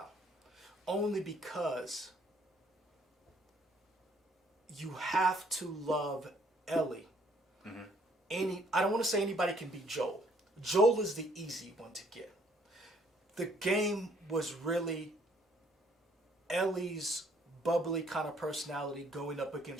only because you have to love Ellie. I don't want to say anybody can be Joel. Joel is the easy one to get. The game was really Ellie's bubbly kind of personality going up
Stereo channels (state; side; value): normal; both; correlation 0.64